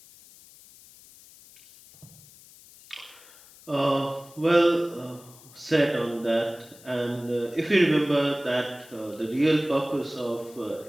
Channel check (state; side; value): noise; left; hiss, 23 dB below the sound